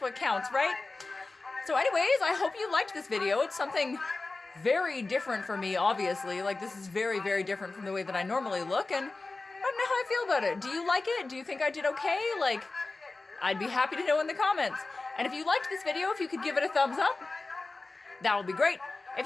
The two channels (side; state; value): right; quieter; 3.5 dB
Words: counts, right? So anyways, I hope you liked this video. It's something very different for me, obviously. Like, this is very, very different from the way that I normally look, and I don't know how I feel about it. Do you like it? Do you think I did okay? Like, I'd be happy to know in the comments. And if you liked this video, if you could give it a thumbs up, that would be great. If